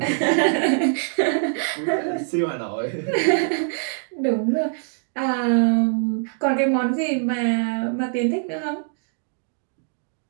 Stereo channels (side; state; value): left; silent; digital silence